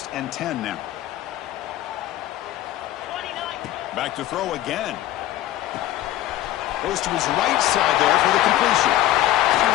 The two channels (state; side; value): quieter; right; 14.1 dB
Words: and 10 now. Back to throw again. Goes to his right side there for the completion.